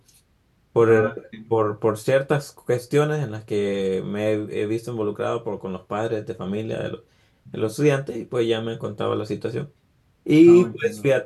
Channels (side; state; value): both; identical; correlation 1.00